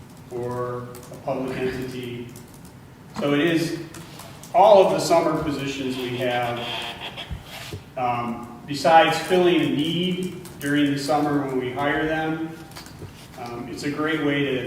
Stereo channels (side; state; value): both; identical; correlation 1.00